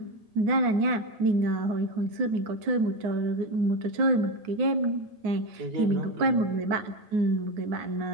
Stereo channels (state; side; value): late; left; 9.6 ms